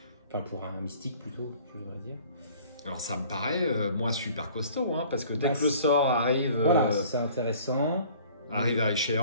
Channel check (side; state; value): both; inverted; correlation -0.51